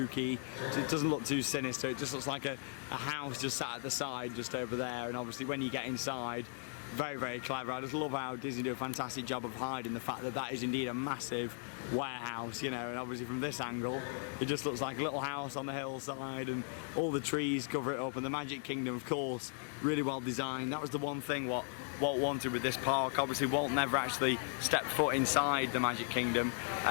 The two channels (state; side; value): silent; right; 53 dB below the other